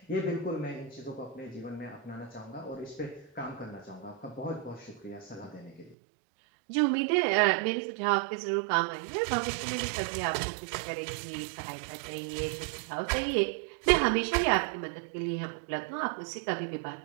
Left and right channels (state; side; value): drops out; left; at 6.0 s